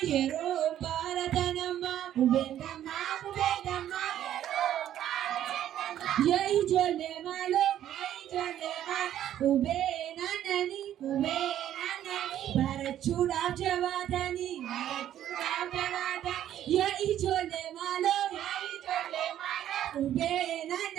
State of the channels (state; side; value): quieter; left; 11.4 dB